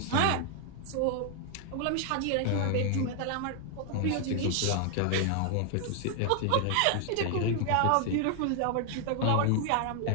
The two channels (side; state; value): both; different; correlation 0.00